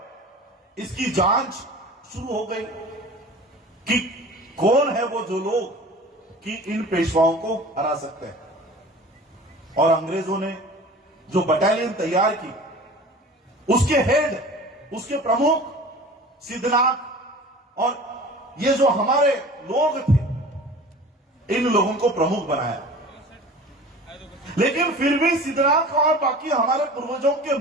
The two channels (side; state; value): both; normal; correlation 0.40